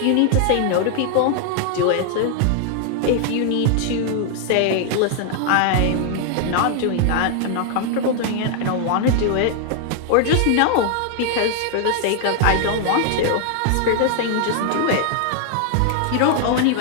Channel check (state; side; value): different; both; correlation 0.00